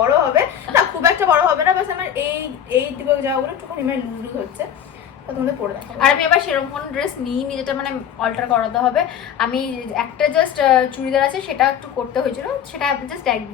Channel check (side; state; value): right; quieter; 9.1 dB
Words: হবে না, খুব একটা বড় হবে না, বাস আমার এই দিকে যাওয়াগুলো একটুখানি মানে লুজ হচ্ছে, তো তোমাদের পরে দেখাবো। আর আমি আবার সেরকম কোনো ড্রেস নিইনি যেটা মানে অল্টার করাতে হবে। আমি একটা জাস্ট চুড়িদার আছে, সেটা একটু করতে হয়েছিল, সেটা জাস্ট